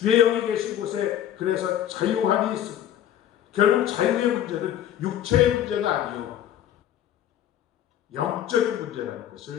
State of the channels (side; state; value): right; quieter; 10.9 dB